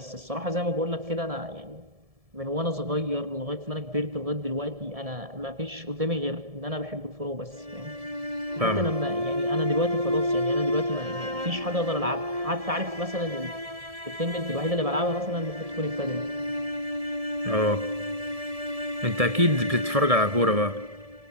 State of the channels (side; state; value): left; late; 1.7 ms